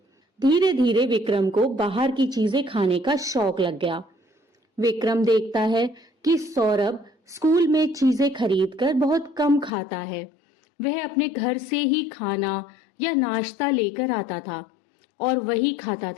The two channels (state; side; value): drops out; right; at 9.7 s